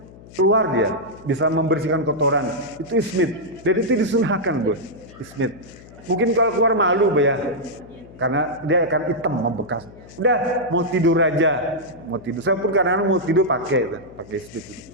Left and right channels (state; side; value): noise; left; hum, 20 dB below the sound